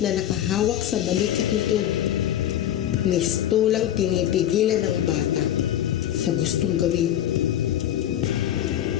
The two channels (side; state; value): right; quieter; 11.6 dB